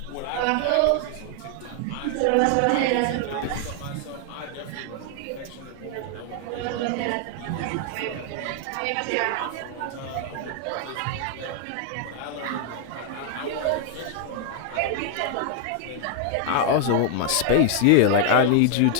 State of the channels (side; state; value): both; different; correlation 0.00